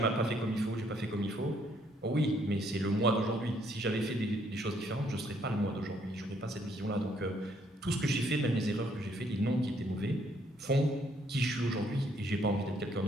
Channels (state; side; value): normal; both; correlation 0.68